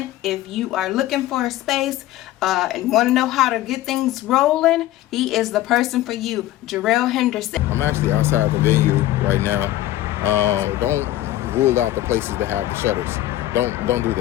If you are looking for a space and want to know how to get things rolling, he is the person for you, Jarrell Henderson. I'm actually outside the venue right now. Don't rule out the places that have the shutters. Don't do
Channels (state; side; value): quieter; right; 14.8 dB